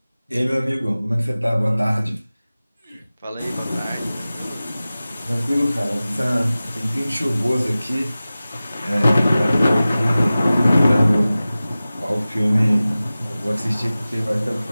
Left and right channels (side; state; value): both; inverted; correlation -0.97